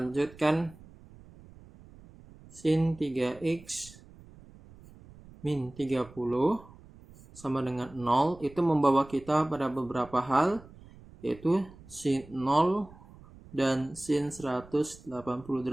sin 3x min 30 sama dengan 0 itu membawa kita pada beberapa hal, yaitu sin 0 dan sin 180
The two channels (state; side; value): noise; right; rumble, 21 dB below the sound